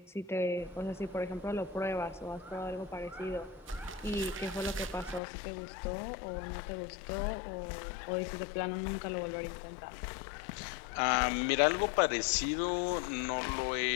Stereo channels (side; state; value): right; drops out; at 5.2 s